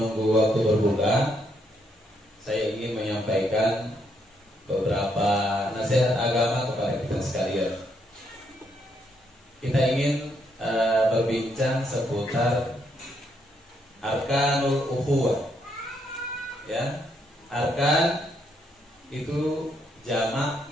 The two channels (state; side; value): normal; both; correlation 0.75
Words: waktu berbuka, saya ingin menyampaikan beberapa nasihat agama kepada kita sekalian. Kita ingin berbincang seputar arkanul ukhuwah. Ya, arkan itu jamak